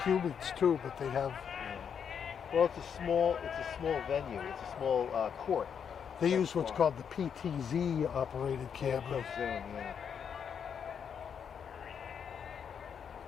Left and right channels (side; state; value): right; quieter; 7.4 dB